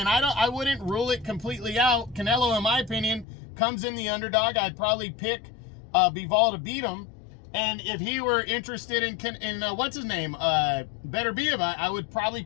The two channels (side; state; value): right; drops out; at 3.2 s